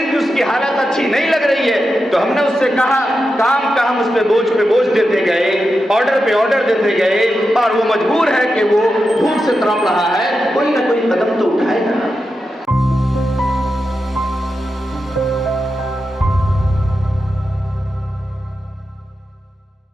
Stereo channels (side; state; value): both; normal; correlation 0.89